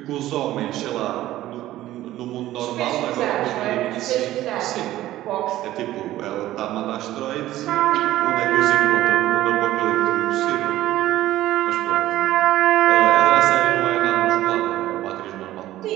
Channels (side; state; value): left; quieter; 14.8 dB